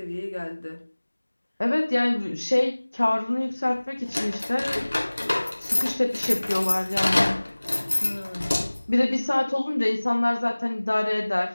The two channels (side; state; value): both; inverted; correlation -1.00